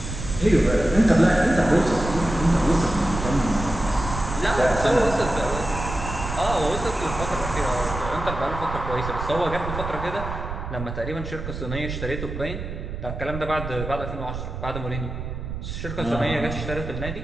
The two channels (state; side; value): noise; right; rumble, 7 dB below the sound